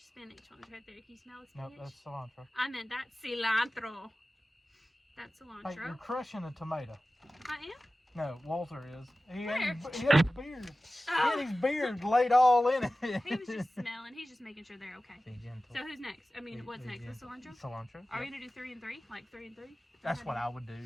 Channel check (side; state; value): both; normal; correlation 0.96